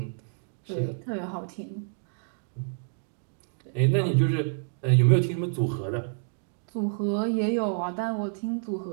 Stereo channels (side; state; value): left; silent; digital silence